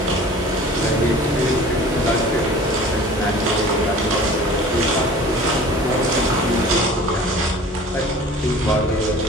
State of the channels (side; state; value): both; normal; correlation 0.44